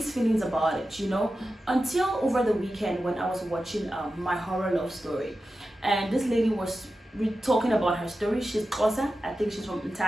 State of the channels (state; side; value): normal; both; correlation 0.92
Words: feelings about it, you know, until over the weekend when I was watching My Horror Love Story. And this lady was talking about her story. She's Xhosa, I think she's from